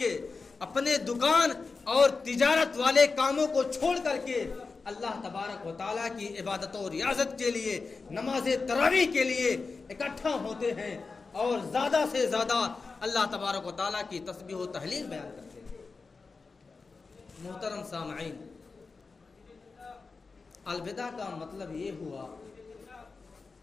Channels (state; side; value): quieter; right; 4.3 dB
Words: اپنے دکان اور تجارت والے کاموں کو چھوڑ کر کے اللہ تبارک و تعالیٰ کی عبادت و ریاضت کے لیے، نماز تراویح کے لیے اکٹھا ہوتے ہیں اور زیادہ سے زیادہ اللہ تبارک و تعالیٰ کی تسبیح و تہلیل بیان کرتے ہیں۔ محترم سامعین، الوداع کا مطلب یہ ہوا